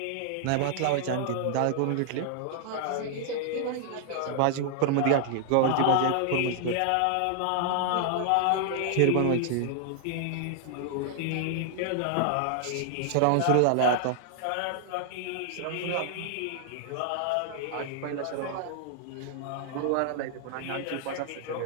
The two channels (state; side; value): different; both; correlation -0.01